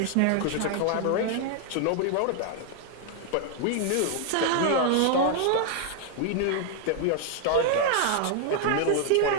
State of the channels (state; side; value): different; both; correlation 0.00